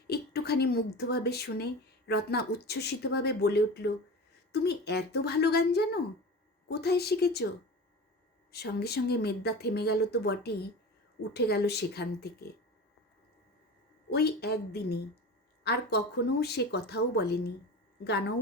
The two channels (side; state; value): both; normal; correlation 0.32